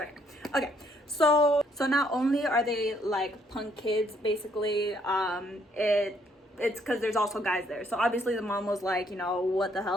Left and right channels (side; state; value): both; normal; correlation 0.69